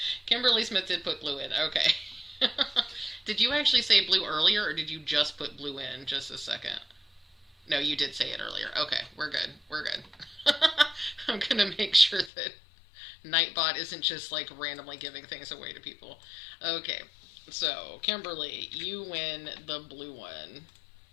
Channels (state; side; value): drops out; right; at 12.3 s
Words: Kimberly Smith did put blue in. Okay. Did you actually say blue earlier, or did you just put blue in just a second? No, you did say it earlier. Okay, we're good. We're good. I'm going to make sure that Nightbot isn't just like randomly giving things away to people. Okay, so Kimberly, you win the blue one.